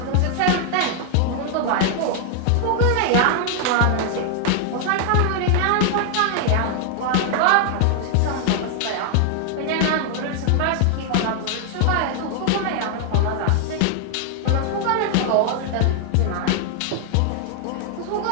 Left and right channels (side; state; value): both; different; correlation 0.00